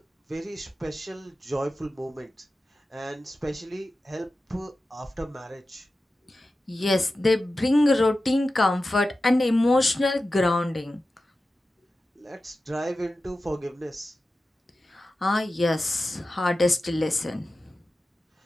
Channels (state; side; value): normal; both; correlation 0.93